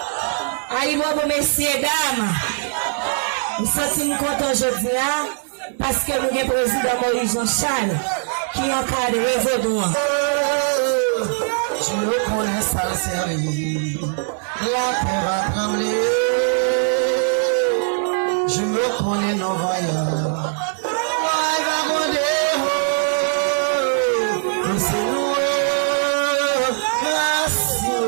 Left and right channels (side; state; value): left; silent; digital silence